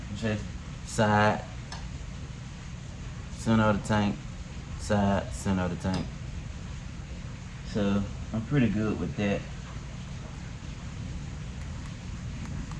Just side, center of the tank, side, center of the tank. So I'm pretty good with that.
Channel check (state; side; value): identical; both; correlation 1.00